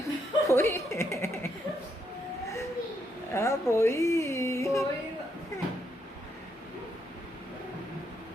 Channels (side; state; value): both; normal; correlation 0.77